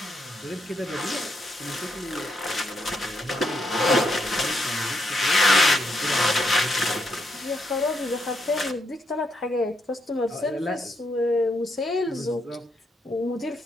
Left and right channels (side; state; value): both; normal; correlation 0.77